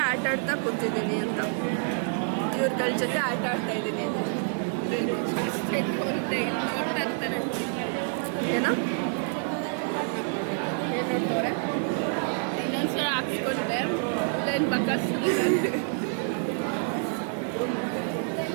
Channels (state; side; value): silent; left; 58 dB below the other